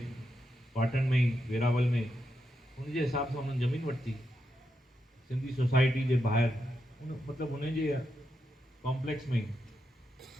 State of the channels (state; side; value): normal; both; correlation 0.85